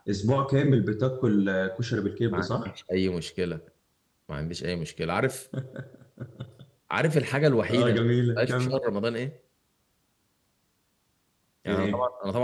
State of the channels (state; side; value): identical; both; correlation 1.00